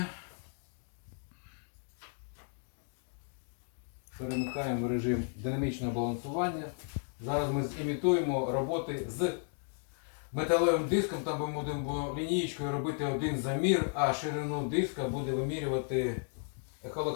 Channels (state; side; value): silent; right; 55 dB below the other